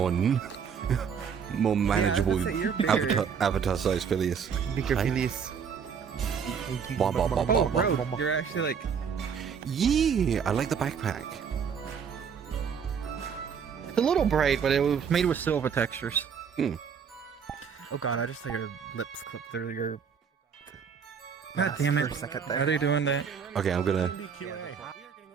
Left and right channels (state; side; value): quieter; left; 6.8 dB